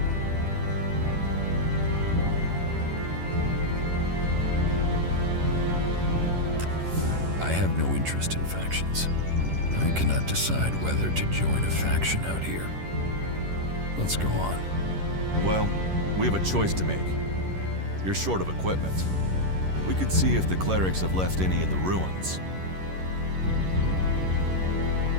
I have no interest in factions. I cannot decide whether to join a faction out here. Let's go on. Well, we have a choice to make. You're short of equipment. We could see if the clerics have left any in the ruins.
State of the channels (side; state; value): left; late; 11 ms